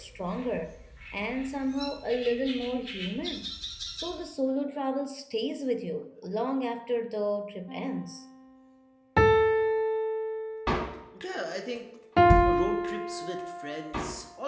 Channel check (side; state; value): both; identical; correlation 1.00